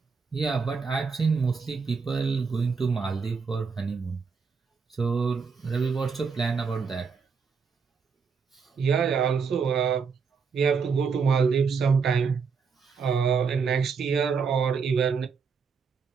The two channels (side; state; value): left; quieter; 5.5 dB